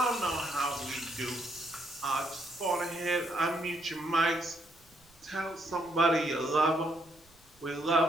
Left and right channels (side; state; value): right; noise; rumble, 29 dB below the sound